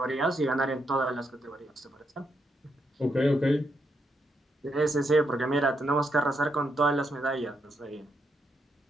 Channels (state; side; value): normal; both; correlation 0.80